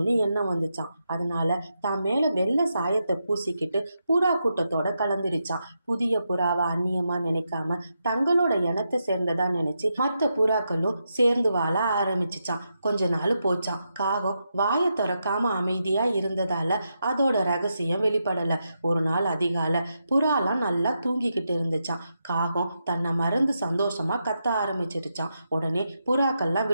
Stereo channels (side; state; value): both; inverted; correlation -0.85